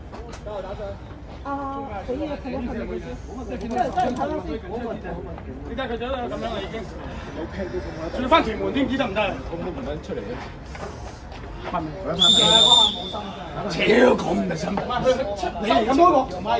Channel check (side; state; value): both; identical; correlation 1.00